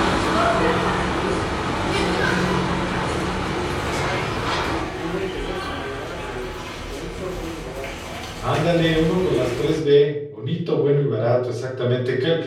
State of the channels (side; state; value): both; identical; correlation 1.00